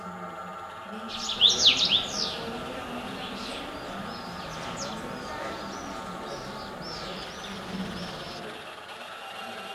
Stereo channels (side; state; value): both; identical; correlation 1.00